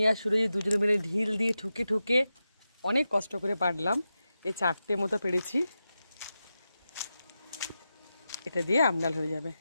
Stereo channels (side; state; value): both; inverted; correlation -0.91